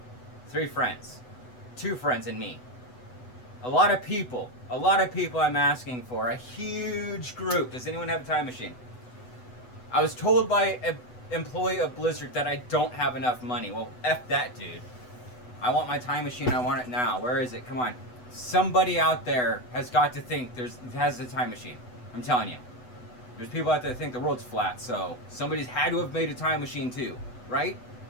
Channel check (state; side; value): late; right; 8.0 ms